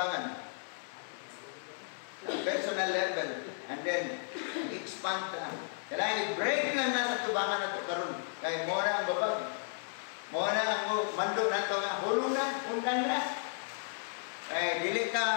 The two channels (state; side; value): silent; right; digital silence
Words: Personal level. And then, expand ka. Kailangan i-break lang nasa tubangan na ito karon. Kaya mo na ang babag. Mo na ang mandok na ito nga. Hulong na, undang na. Ay, dili